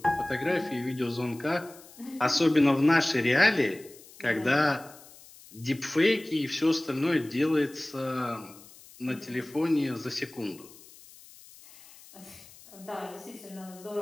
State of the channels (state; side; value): noise; left; hiss, 22 dB below the sound